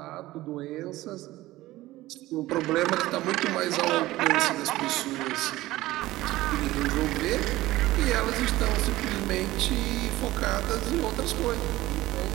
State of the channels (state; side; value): quieter; left; 17.3 dB